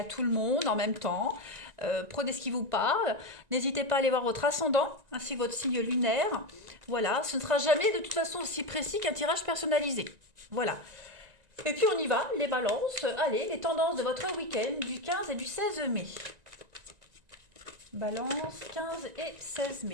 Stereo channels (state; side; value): late; left; 1.9 ms